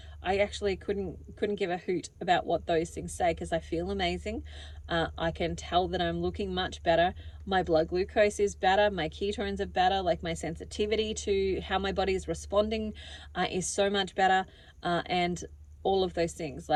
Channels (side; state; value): both; identical; correlation 1.00